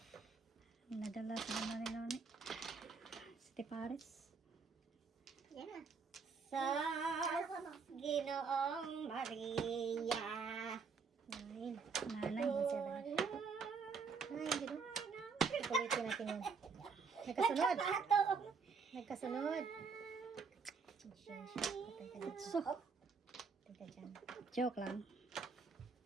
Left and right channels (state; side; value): quieter; left; 5.3 dB